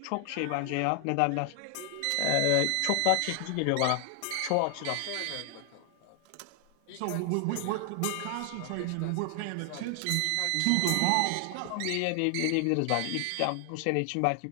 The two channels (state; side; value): different; both; correlation 0.00